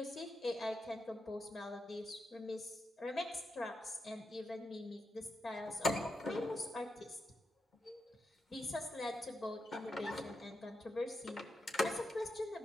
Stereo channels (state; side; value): normal; both; correlation 0.86